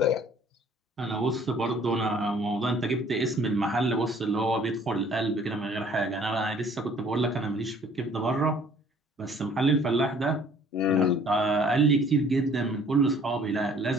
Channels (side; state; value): both; normal; correlation 0.56